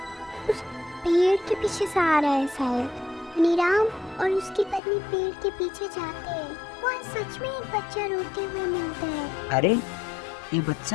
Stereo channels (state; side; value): drops out; right; at 4.8 s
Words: उस पेड़ के पीछे से आ रहा है शायद। धनीराम और उसकी पत्नी पेड़ के पीछे जाते हैं। वहाँ सच में एक बच्चा रोते हुए मिलता है। अरे ये